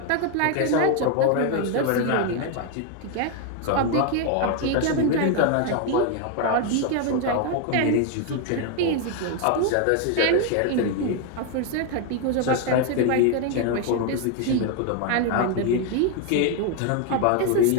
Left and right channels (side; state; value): both; different; correlation 0.01